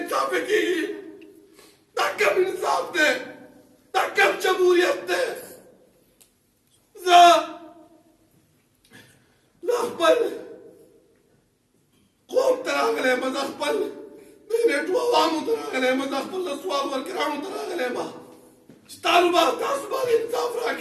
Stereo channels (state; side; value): identical; both; correlation 1.00